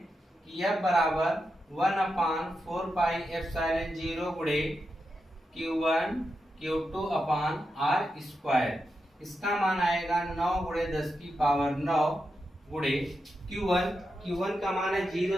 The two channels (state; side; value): normal; both; correlation 0.88